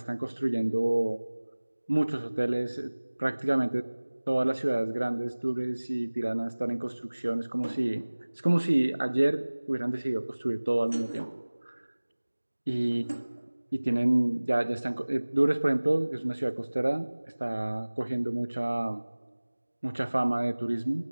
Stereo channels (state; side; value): inverted; both; correlation -1.00